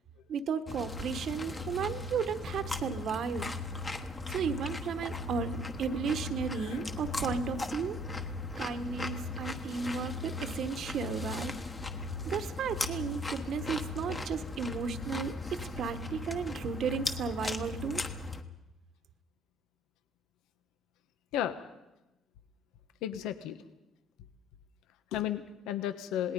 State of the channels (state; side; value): normal; both; correlation 0.57